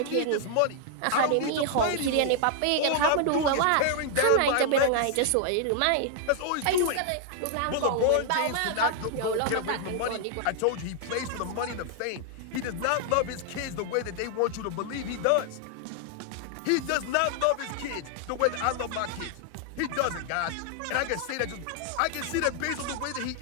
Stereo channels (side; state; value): both; different; correlation 0.00